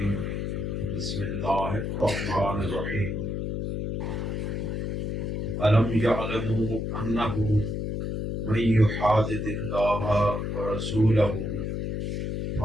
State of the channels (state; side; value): noise; left; hum, 2 dB below the sound